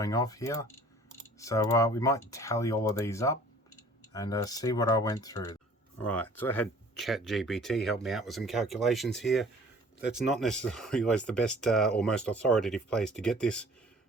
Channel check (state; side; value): normal; both; correlation 0.51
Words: off here. So we might tally all of these up and see what I went through. Alright, so I had ChatGPT help me out with some calculations here. That's not necessarily always the best or most authoritative place to get this,